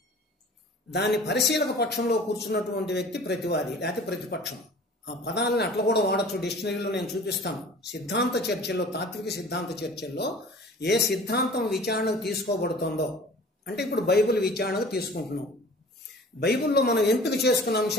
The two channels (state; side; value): normal; both; correlation 0.45